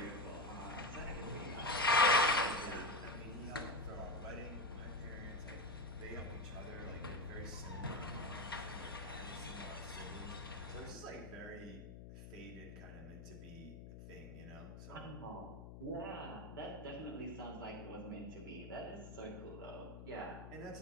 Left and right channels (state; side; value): noise; left; hum, 11 dB below the sound